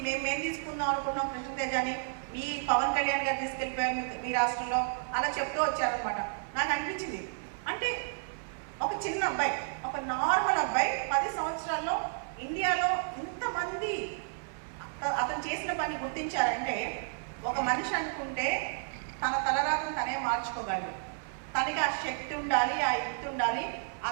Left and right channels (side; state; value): left; silent; 57 dB below the other